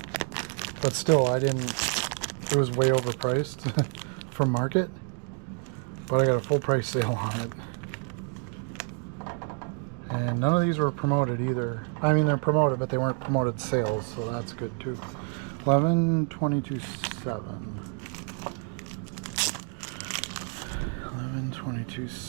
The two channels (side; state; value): left; quieter; 36.5 dB